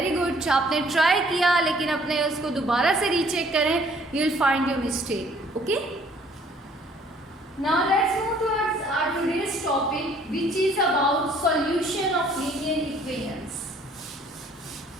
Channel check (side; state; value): both; normal; correlation 0.59